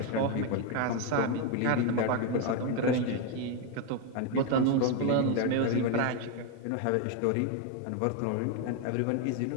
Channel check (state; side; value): different; both; correlation 0.01